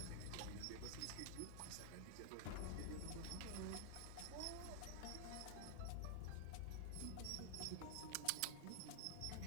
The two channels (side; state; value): both; different; correlation 0.00